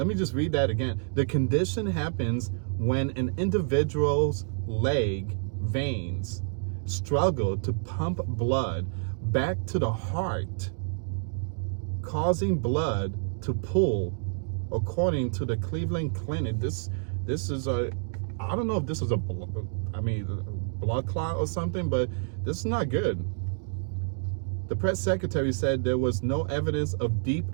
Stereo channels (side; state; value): left; silent; digital silence